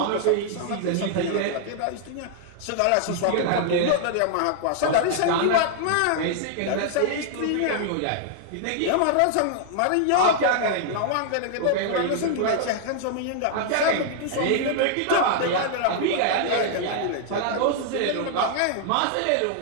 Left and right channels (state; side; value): different; both; correlation -0.01